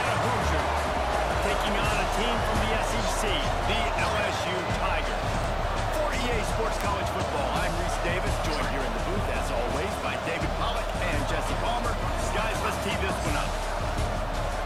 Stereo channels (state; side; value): identical; both; correlation 1.00